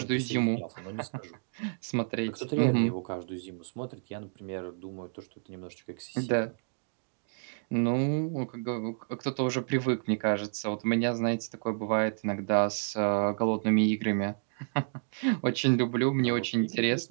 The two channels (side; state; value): left; silent; digital silence